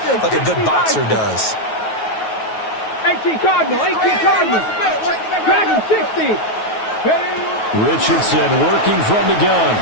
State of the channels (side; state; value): right; late; 9.3 ms